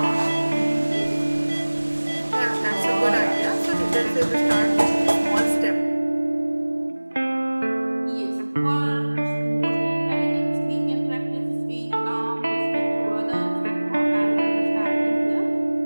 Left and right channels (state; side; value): inverted; both; correlation -1.00